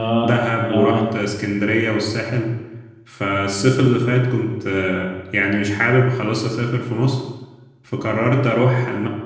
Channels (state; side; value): identical; both; correlation 1.00